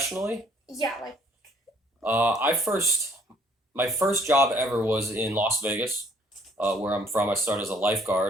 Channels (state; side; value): normal; both; correlation 0.62